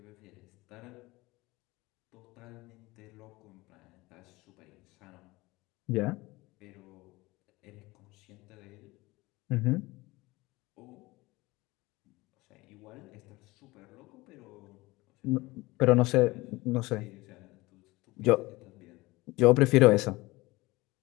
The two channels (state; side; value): quieter; right; 21.3 dB